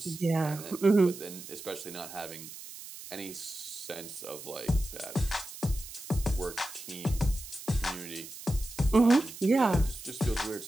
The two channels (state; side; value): noise; right; hiss, 13 dB below the sound